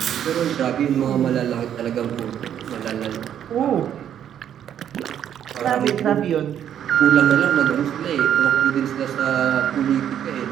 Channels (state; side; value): quieter; left; 9.8 dB